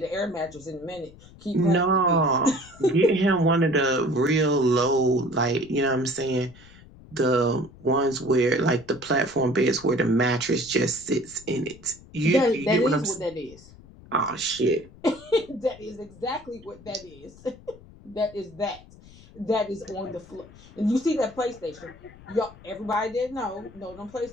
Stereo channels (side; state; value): left; noise; rumble, 22 dB below the sound